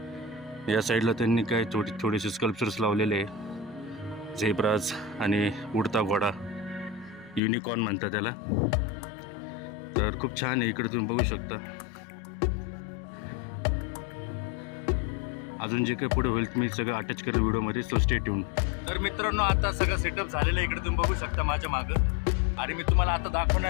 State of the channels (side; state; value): right; drops out; at 7.4 s